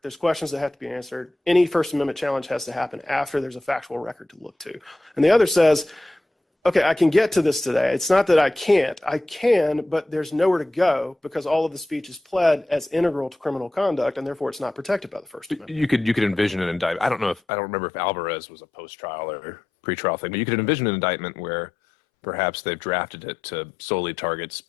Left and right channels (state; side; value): drops out; right; at 17.4 s